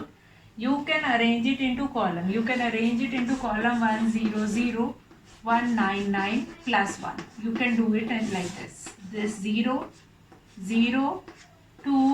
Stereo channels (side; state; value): both; identical; correlation 1.00